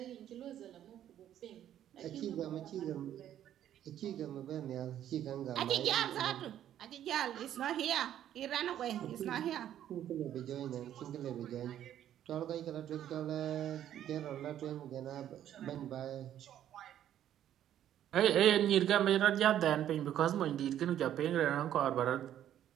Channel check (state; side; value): quieter; left; 11.1 dB